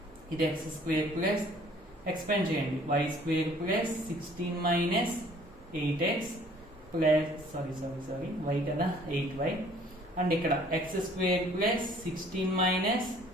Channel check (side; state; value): both; normal; correlation 0.56